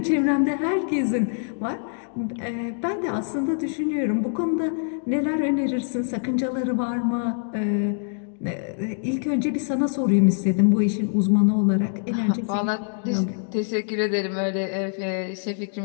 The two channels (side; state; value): right; silent; digital silence